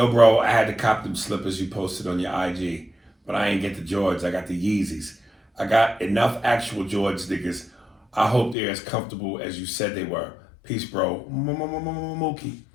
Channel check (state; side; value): drops out; right; at 8.6 s